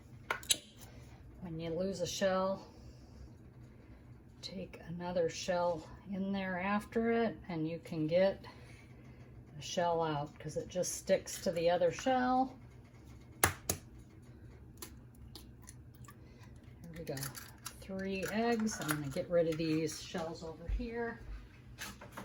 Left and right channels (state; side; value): identical; both; correlation 1.00